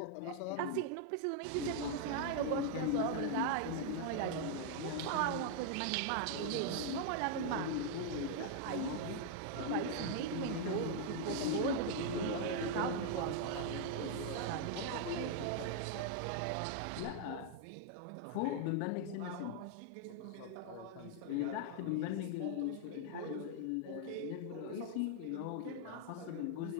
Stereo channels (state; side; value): different; both; correlation 0.00